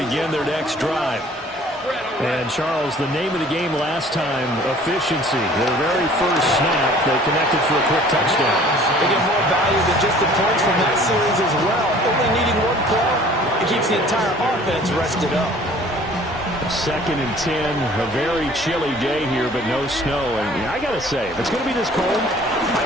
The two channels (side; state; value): both; normal; correlation 0.51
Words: their next drive. And, Charles, the name of the game last time, efficiency. Their very first snap, they connected for a quick touchdown. They get more value than just the points from that series as well. Only needing one play, it keeps the entire offense rested up. 2nd and 10, a very chilly day here, but no snow. And I got to say, if it's going to be this cold, I